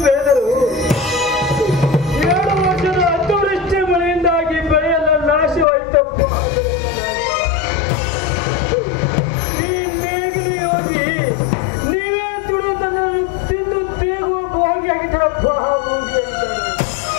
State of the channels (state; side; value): drops out; right; at 5.7 s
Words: ಬೆಳೆದರು 2 ವರ್ಷದ ಅತಿವೃಷ್ಟಿ ಮಳೆಯಿಂದಾಗಿ ಬೆಳೆಯೆಲ್ಲ ನಾಶವಾಯಿತಪ್ಪ. ಈ ನೇಗಿಲು ಯೋಗಿ ನೀವೇ ದುಡಿದನ್ನು ತಿಂದು ತೇಗುವ ಭೋಗಿ ಆಗಿದ್ದಪ್ಪ.